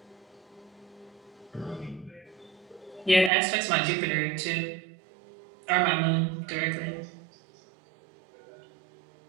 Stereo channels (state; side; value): drops out; left; at 3.3 s